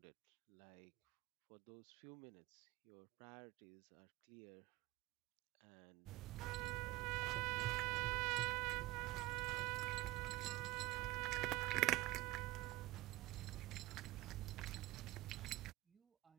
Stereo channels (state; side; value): quieter; left; 18.7 dB